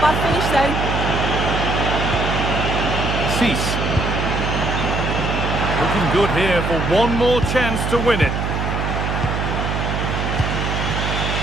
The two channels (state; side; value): noise; right; hum, 1 dB below the sound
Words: bad finish, though. Cease. Looking good here for one more chance to win it.